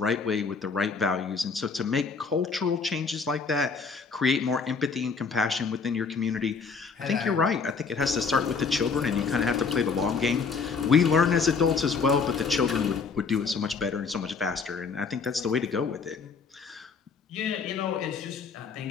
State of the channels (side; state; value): right; quieter; 5.1 dB